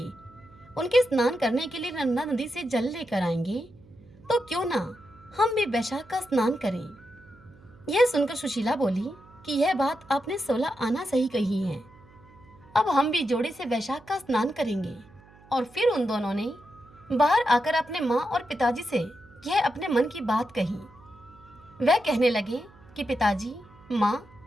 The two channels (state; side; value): noise; right; hum, 25 dB below the sound